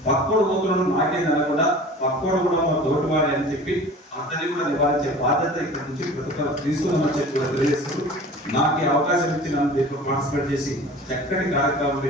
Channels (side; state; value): both; normal; correlation 0.41